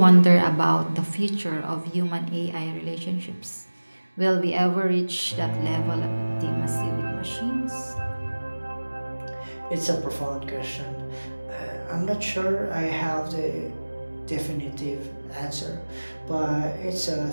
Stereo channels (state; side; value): inverted; both; correlation -1.00